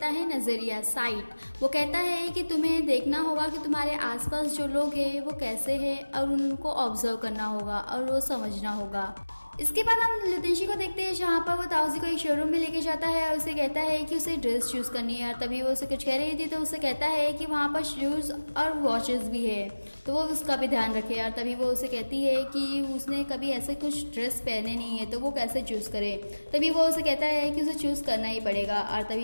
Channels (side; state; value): both; inverted; correlation -1.00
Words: है नज़रिया, साइट। वो कहता है कि तुम्हें देखना होगा कि तुम्हारे आसपास जो लोग हैं वो कैसे हैं और उनको ऑब्जर्व करना होगा और वो समझना होगा। इसके बाद हम लुतेंशी को देखते हैं, जहाँ पर वो ताउजी को एक शोरूम में लेके जाता है और उसे कहता है कि उसे ड्रेस चूज़ करनी है। और तभी वो उसे कुछ कह रही थी तो उसे कहता है कि वहाँ पर शूज़ और वॉचेस भी है, तो वो उसका भी ध्यान रखे। और तभी वो उसे कहती है कि उसने कभी ऐसे कुछ ड्रेस पहने नहीं है, तो वो कैसे चूज़ करे। तभी वो उसे कहता है कि उसे चूज़ करना ही पड़ेगा। और